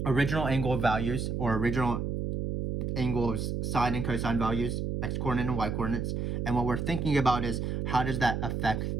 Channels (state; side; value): noise; right; hum, 2 dB below the sound